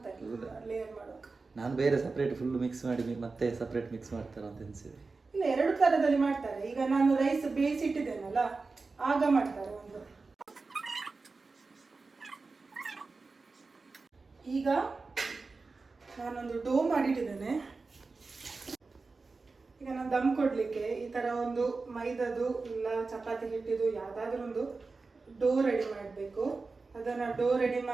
ಲೇಯರ್ ಮಾಡೋಕೆ. ನಾನು ಬೇರೆ ಸಪ್ರೇಟ್ ಫುಲ್ ಮಿಕ್ಸ್ ಮಾಡಿ ಮತ್ತೆ ಸಪ್ರೇಟ್ ಮಿಕ್ಸ್ ಮಾಡ್ತಾರ ಅಂತ ಅನ್ಸಿದೆ. ಇಲ್ಲ, ಎರಡು ತರದಲ್ಲಿ ಮಾಡ್ತಾರೆ. ಈಗ ನಾನು ರೈಸ್ ಬೇಯಿಸಿಟ್ಟಿದ್ದೇನಲ್ಲ ಆಗ ಮಾಡ್ತಾರೆ ಒಂದು. ಈಗ ನಾನೊಂದು ಡೋ ಮಾಡಿಟ್ಟಿದ್ದೇನೆ. ಈಗ ನಾನು ದಮ್ ಕೊಡ್ಲಿಕ್ಕೆ ಈ ತರ ಒಂದು ಮೈದಾದು ಇಲ್ಲ ಚಪಾತಿ ಹಿಟ್ಟಿದು ಯಾವ್ದಾದ್ರು ಒಂದು ಡೋ ರೆಡಿ ಮಾಡಬೇಕು. ಅದನ್ನ ಡೋ ರೆಡಿ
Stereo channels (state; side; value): quieter; left; 4.0 dB